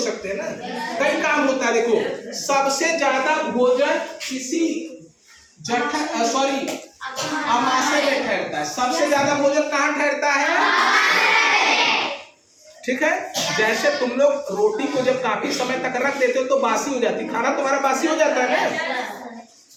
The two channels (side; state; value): both; identical; correlation 1.00